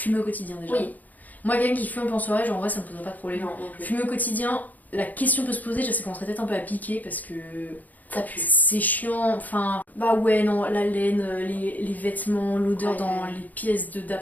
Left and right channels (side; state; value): right; late; 0.080 ms